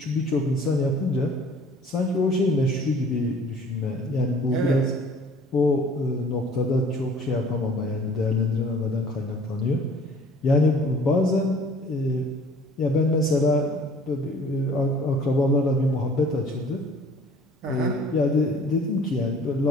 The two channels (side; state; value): both; normal; correlation 0.52